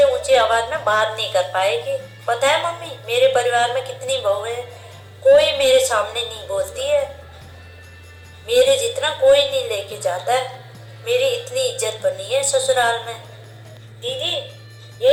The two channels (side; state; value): both; identical; correlation 1.00